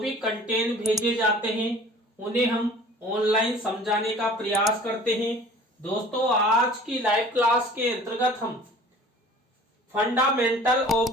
कंटेंट भेजे जाते हैं उन्हें हम ऑनलाइन समझाने का प्रयास करते हैं। दोस्तों, आज की लाइव क्लास के अंतर्गत हम fundamental of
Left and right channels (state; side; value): normal; both; correlation 0.47